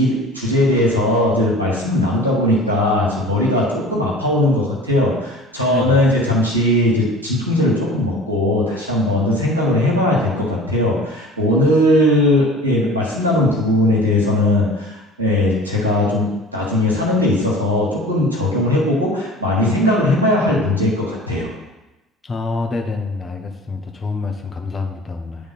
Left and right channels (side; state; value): both; normal; correlation 0.41